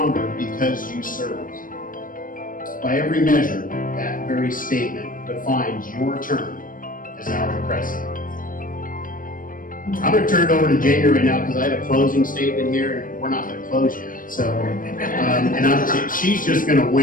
because you served. By every measure, that very statement defines your term as our president. I'm going to turn it over to Jamie right now because I have a closing statement here, and we're not going to close yet. So, she's just going to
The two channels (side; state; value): right; late; 0.40 ms